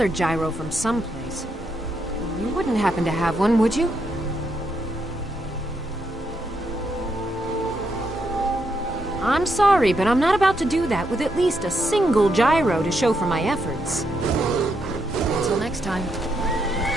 gyro from someplace. You wouldn't happen to have one, would you? I'm sorry, but I'm not about to do that with at least a single gyro to show for my efforts. Until next time.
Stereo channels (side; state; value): both; normal; correlation 0.79